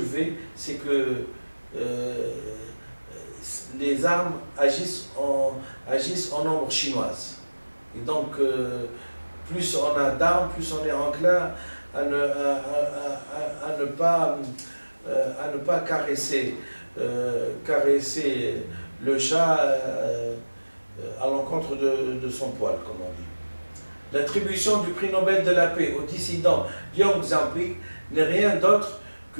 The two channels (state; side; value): inverted; both; correlation -1.00